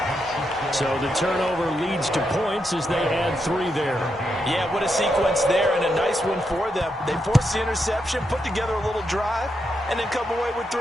So the turnover leads to points as they add 3 there. Yeah, what a sequence there, and a nice one for them. They force the interception, put together a little drive, and then come away with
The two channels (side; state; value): both; normal; correlation 0.83